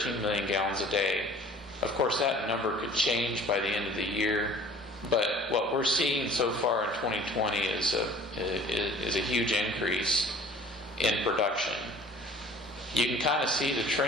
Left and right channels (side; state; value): both; normal; correlation 0.49